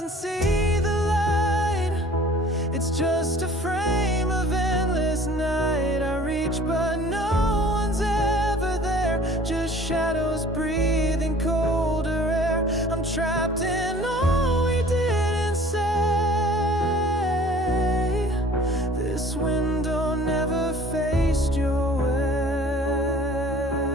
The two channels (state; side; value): normal; both; correlation 0.49